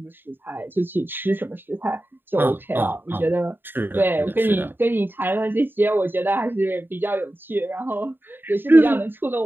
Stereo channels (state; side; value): late; left; 0.096 ms